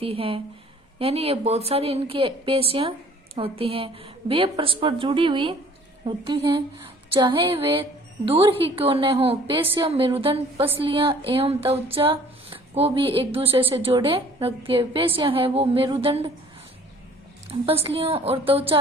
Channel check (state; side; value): normal; both; correlation 0.54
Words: हैं। यानी ये बहुत सारी इनकी पेशियां होती हैं। वे परस्पर जुड़ी हुई होती हैं, चाहे वे दूर ही क्यों न हो। पेशियां मेरुदंड, पसलियां एवं त्वचा को भी एक दूसरे से जोड़े रखती है। पेशियां है वो मेरुदंड, पसलियों और